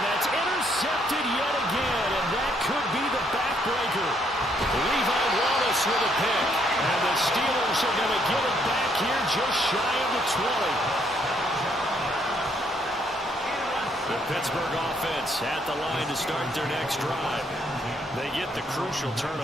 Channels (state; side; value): normal; both; correlation 0.71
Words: that's intercepted yet again, and that could be the backbreaker. Levi Wallace with a pick, and the Steelers are going to get it back here just shy of the 20. The Pittsburgh offense at the line to start their next drive. They get the crucial